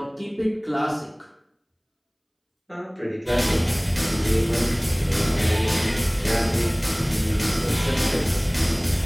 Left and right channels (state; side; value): identical; both; correlation 1.00